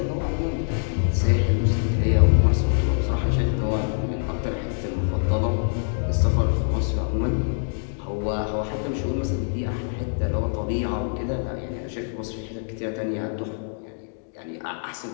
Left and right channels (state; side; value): silent; right; digital silence